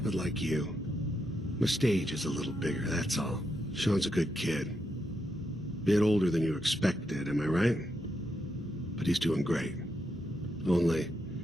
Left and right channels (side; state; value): both; normal; correlation 0.82